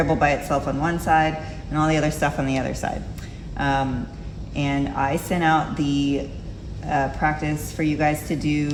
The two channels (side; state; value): both; identical; correlation 1.00